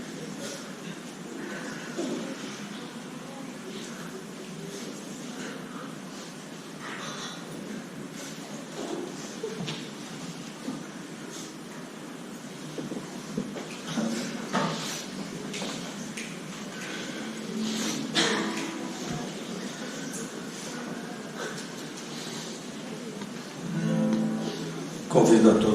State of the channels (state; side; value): identical; both; correlation 1.00